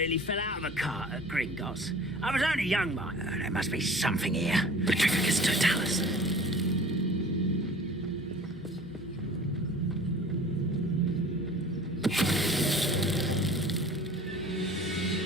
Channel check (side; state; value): both; normal; correlation 0.44